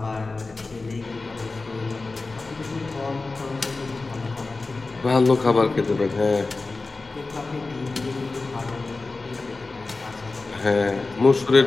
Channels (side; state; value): right; quieter; 3.6 dB